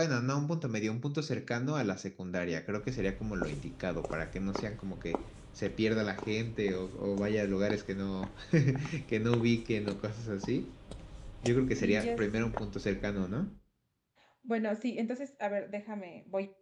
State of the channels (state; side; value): identical; both; correlation 1.00